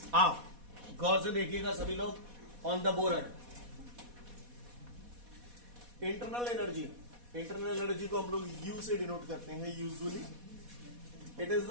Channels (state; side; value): late; left; 4.1 ms